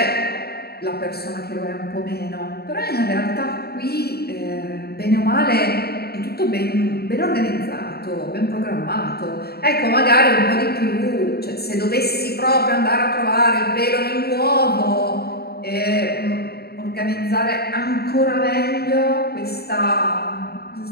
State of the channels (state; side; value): late; right; 0.46 ms